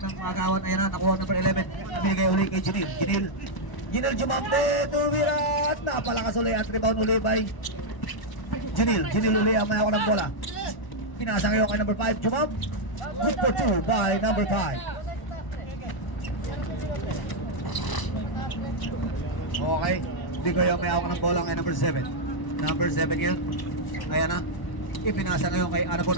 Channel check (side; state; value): right; late; 1.0 ms